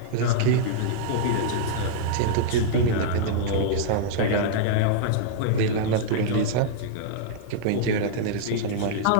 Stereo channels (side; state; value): both; different; correlation -0.02